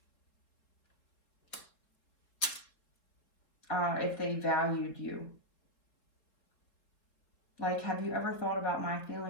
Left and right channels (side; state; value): right; late; 4.2 ms